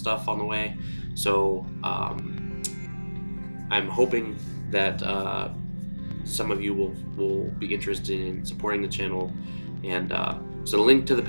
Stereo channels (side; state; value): both; inverted; correlation -1.00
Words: on the way. So I'm hoping that some of you will be interested in supporting the channel. And so the link to the